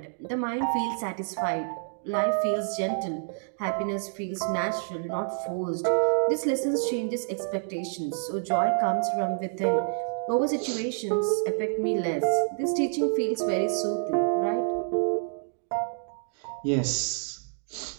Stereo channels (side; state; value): left; silent; digital silence